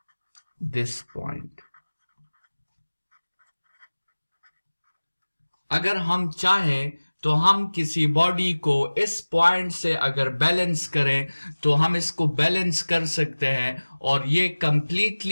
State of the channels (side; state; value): both; inverted; correlation -1.00